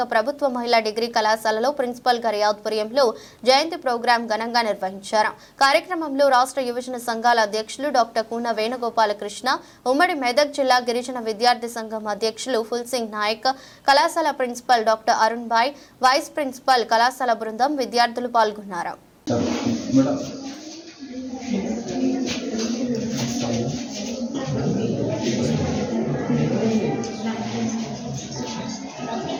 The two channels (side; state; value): both; identical; correlation 1.00